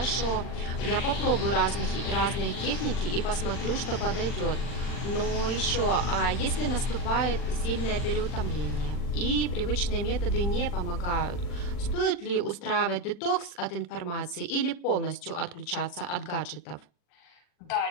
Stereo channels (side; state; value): right; late; 40 ms